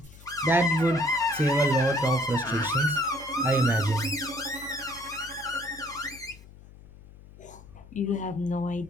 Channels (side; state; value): left; noise; hum, 20 dB below the sound